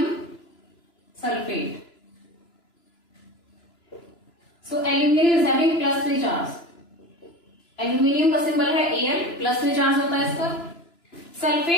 sulphate, so aluminium is having +3 charge. Aluminium का सिंबल है Al, +3 चार्ज होता है इस पर।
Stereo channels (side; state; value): right; late; 2.9 ms